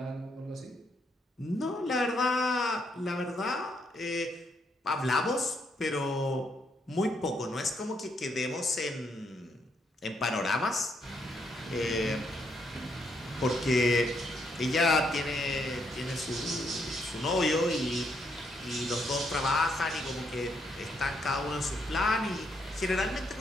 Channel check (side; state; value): both; normal; correlation 0.75